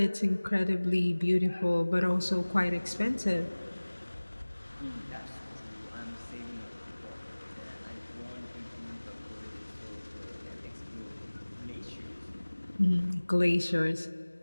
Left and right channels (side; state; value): both; inverted; correlation -1.00